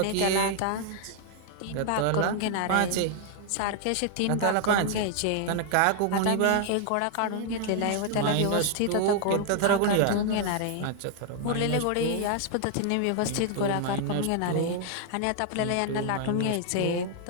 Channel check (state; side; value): different; both; correlation 0.00